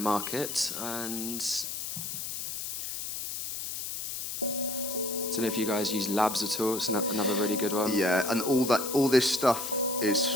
and I don't know if you guys use Labs at all. It's another really good one. Yeah, and all this stuff is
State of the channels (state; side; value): noise; left; hiss, 4 dB below the sound